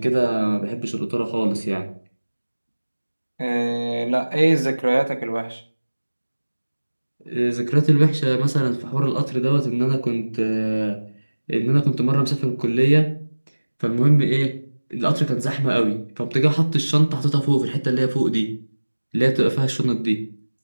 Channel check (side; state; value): both; inverted; correlation -1.00